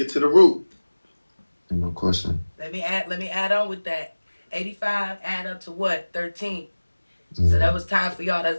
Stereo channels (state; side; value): inverted; both; correlation -1.00